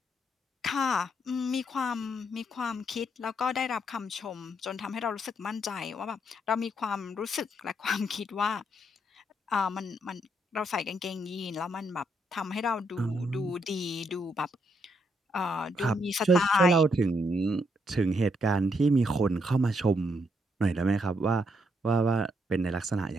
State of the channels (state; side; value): normal; both; correlation 0.76